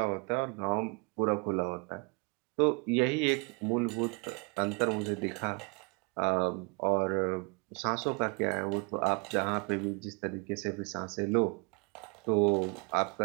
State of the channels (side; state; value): left; quieter; 32.1 dB